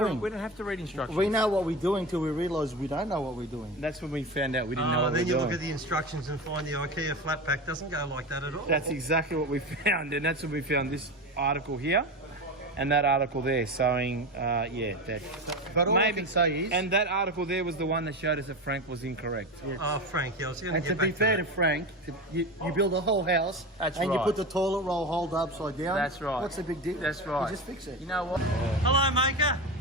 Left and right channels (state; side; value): normal; both; correlation 0.24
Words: doing. We don't have to read instructions. We know what we're doing till we realise we don't know what we're doing. That's when we found out we didn't know what we Then were you doing. look at the instructions and find the IKEA flat pack doesn't go like that at all. That's exactly what we found, and that's when we found this article here, and that article there showing, that. But all I can say is, And that article there was the one that showed us that Frank was incorrect. Oh, Frank, I was going to and get to back be fair to to Frank, you build a whole house That's and you right. put the toilet roll holder upside down. That's right. What's the big deal? That's right. You just fix it. You know what? Hello, Maker.